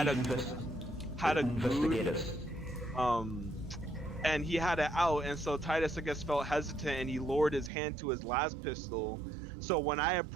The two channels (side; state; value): left; drops out; at 7.7 s